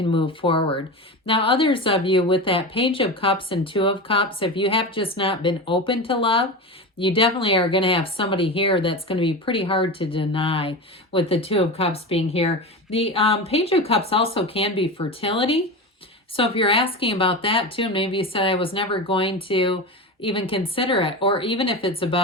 move forward. Now, others of you with that Page of Cups and Two of Cups, if you have just not been open to love, you definitely are going to have somebody here that's going to be pretty hard to deny with the Two of Cups being here. The Page of Cups also can be fertility. So if you're asking about that too, maybe you said I was never going to even consider it, or even if it's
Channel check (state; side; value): normal; both; correlation 0.25